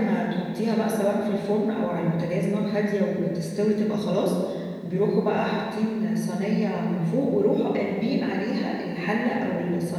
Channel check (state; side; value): identical; both; correlation 1.00